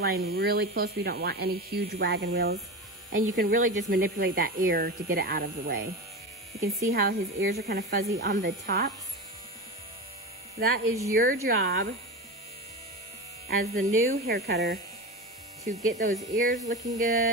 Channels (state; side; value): normal; both; correlation 0.24